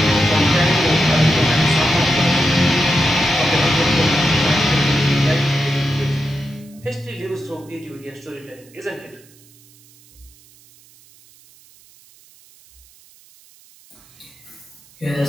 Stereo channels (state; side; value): noise; right; hiss, 27 dB below the sound